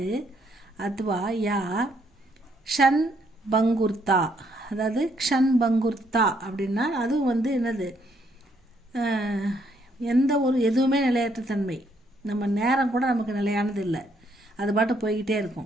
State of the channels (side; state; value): both; normal; correlation 0.71